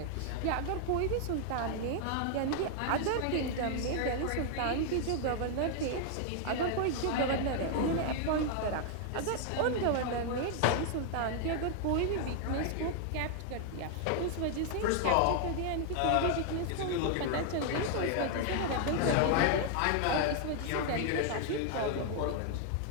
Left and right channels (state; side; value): different; both; correlation 0.00